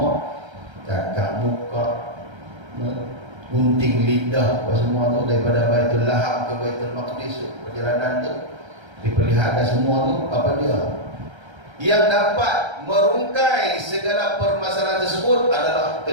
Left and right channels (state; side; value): late; left; 1.3 ms